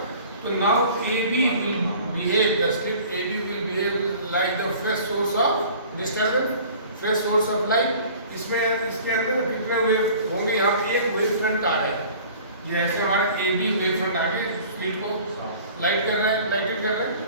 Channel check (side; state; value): both; inverted; correlation -0.47